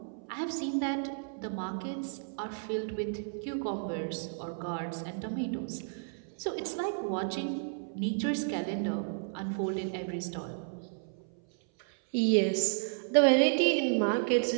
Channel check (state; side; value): silent; left; 56 dB below the other